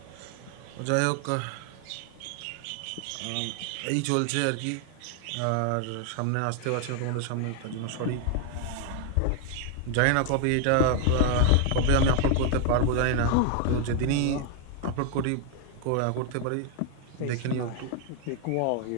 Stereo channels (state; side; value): different; both; correlation 0.01